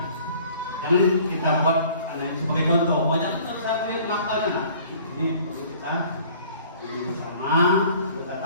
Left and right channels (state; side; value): inverted; both; correlation -0.52